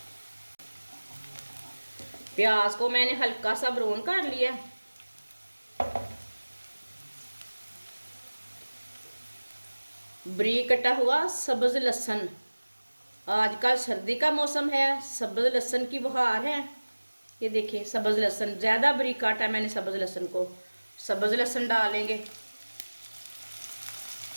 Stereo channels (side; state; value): both; inverted; correlation -1.00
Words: प्याज को मैंने हल्का सा ब्राउन कर लिया। बारीक कटा हुआ सब्ज लहसुन, आजकल सर्दी का मौसम है, सब्ज लहसुन की बहार है। ये देखिए सब्ज लहसुन, ज़्यादा बारीक काटा मैंने सब्ज लहसुन को। सब्ज लहसुन डालेंगे।